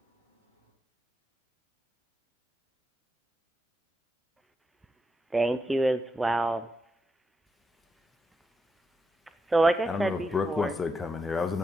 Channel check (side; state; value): both; normal; correlation 0.86